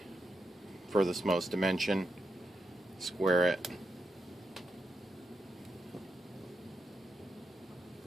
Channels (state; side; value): normal; both; correlation 0.84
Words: furthest most dimension, square it,